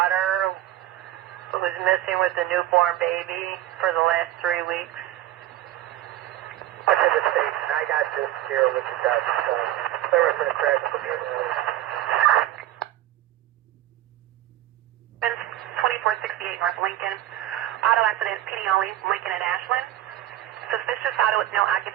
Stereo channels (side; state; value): left; quieter; 13.5 dB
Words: who was missing with a newborn baby for the last 3 weeks. I did the state. I got this here with the dust. Sorry for the crash. 2468 North Lincoln. Auto accident, PD only, Lincoln and Ashland. Suspicious auto with no